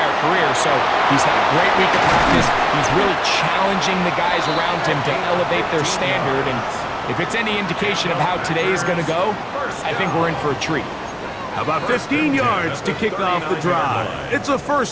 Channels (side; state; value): both; identical; correlation 1.00